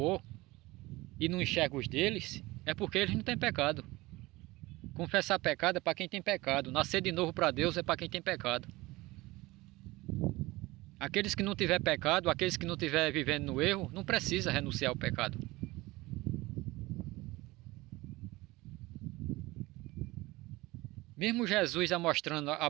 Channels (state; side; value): quieter; left; 20.6 dB